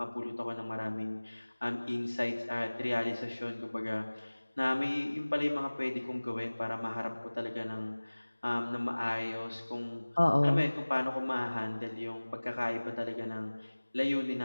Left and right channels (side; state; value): both; inverted; correlation -1.00